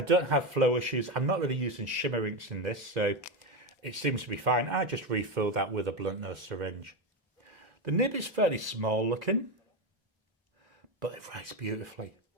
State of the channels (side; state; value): both; normal; correlation 0.13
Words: don't have flow issues. I'm not really using shimmer inks in this, so it seems to be fine. I just refill that with a blunt nose syringe. The nib is fairly small looking, but it writes beautifully.